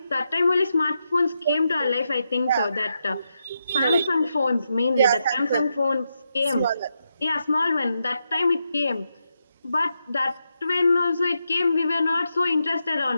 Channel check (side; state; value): both; inverted; correlation -0.85